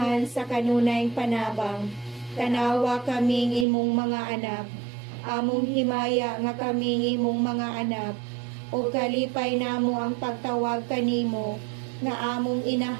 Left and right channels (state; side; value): drops out; left; at 3.7 s